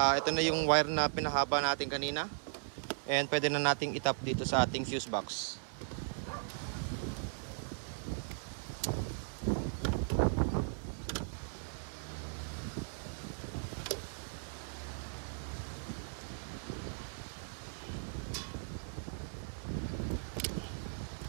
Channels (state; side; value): silent; left; 53 dB below the other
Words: na yung wire na pinahaba natin kanina. And pwede na nating itap dito sa ating fuse box.